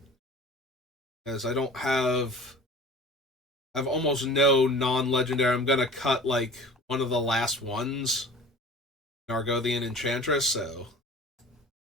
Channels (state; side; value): normal; both; correlation 0.43